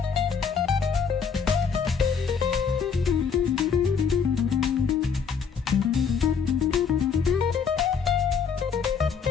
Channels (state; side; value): quieter; right; 6.2 dB